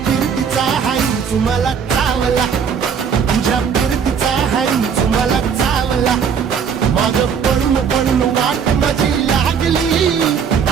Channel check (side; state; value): left; quieter; 7.0 dB